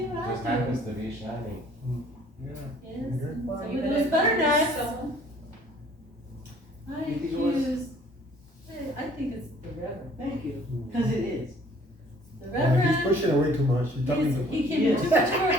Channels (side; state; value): both; normal; correlation 0.56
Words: I just do. happens to be shiny. Yeah. Yes, Okay. Well, so you with better those butter choose knives. someone. I You think it was? accuse, I think it's the Reverend. Thank you, because it is. The He's Reverend, pushing away too much, he's talking too much. he came in